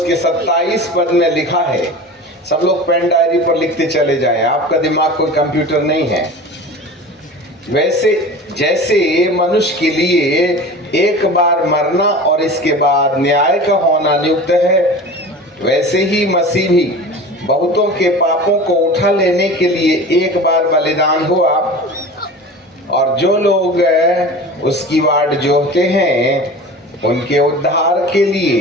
27 पद में लिखा है। सब लोग पेन डायरी पर लिखते चले जाएं, आपका दिमाग कोई कंप्यूटर नहीं है। वैसे जैसे मनुष्य के लिए एक बार मरना और इसके बाद न्याय का होना नियुक्त है, वैसे ही मसीह भी बहुतों के पापों को उठा लेने के लिए एक बार बलिदान हुआ, और जो लोग उसकी वाट जोहते हैं उनके उद्धार के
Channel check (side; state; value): both; normal; correlation 0.35